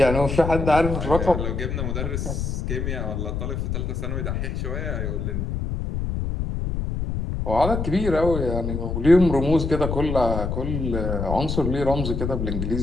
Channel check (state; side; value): noise; left; rumble, 2 dB below the sound